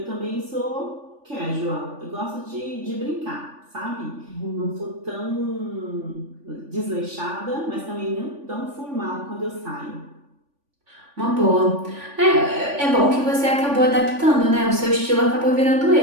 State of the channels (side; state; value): left; late; 3.5 ms